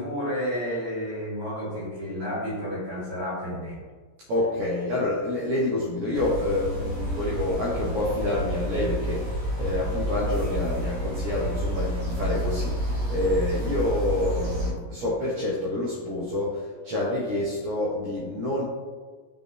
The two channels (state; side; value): late; left; 17 ms